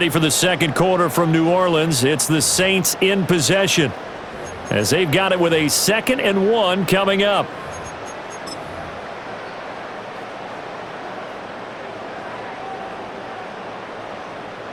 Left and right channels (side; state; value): both; identical; correlation 1.00